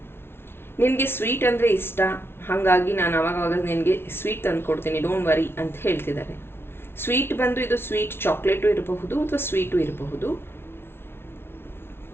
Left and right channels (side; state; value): right; late; 0.12 ms